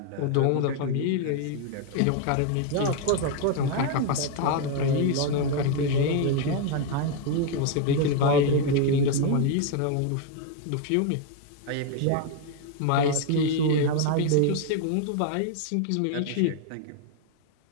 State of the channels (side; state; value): both; different; correlation 0.01